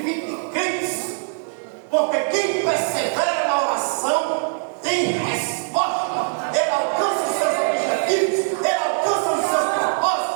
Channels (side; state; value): left; silent; digital silence